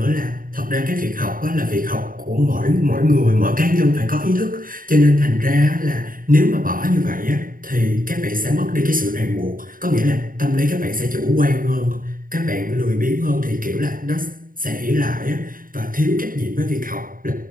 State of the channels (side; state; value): left; late; 0.41 ms